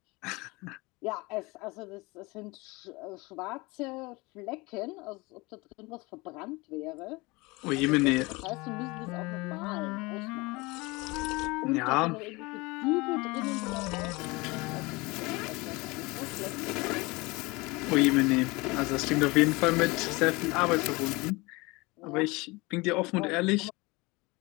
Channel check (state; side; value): quieter; right; 24.2 dB